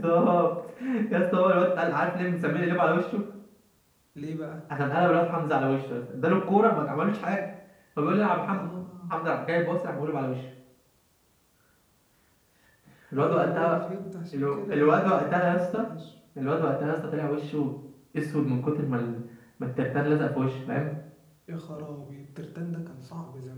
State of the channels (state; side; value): identical; both; correlation 1.00